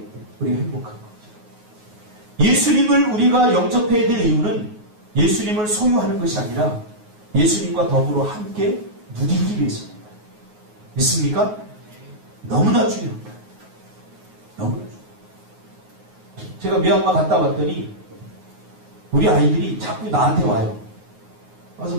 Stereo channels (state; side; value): late; left; 9.5 ms